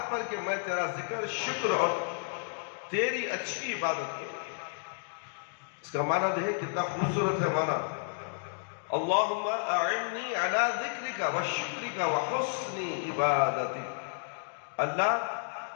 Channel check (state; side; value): silent; right; digital silence